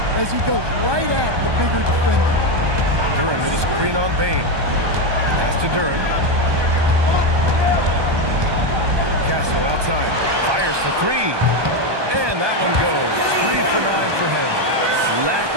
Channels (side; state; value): left; late; 1.2 ms